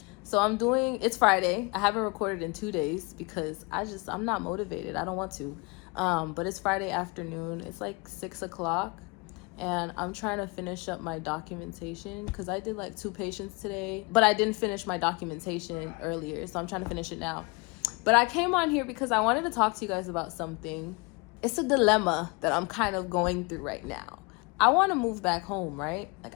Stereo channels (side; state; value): right; quieter; 28.8 dB